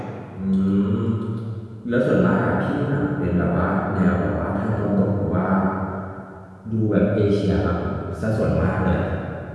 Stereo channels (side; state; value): both; identical; correlation 1.00